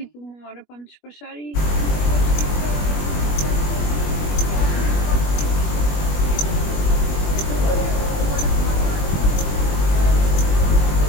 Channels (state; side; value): late; right; 21 ms